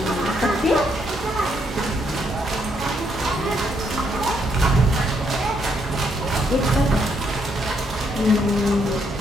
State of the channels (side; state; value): both; normal; correlation 0.74